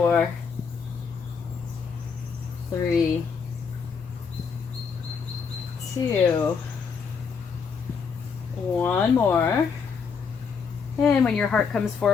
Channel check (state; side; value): quieter; right; 5.8 dB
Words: 3, 2, 1 more. And when your heart comes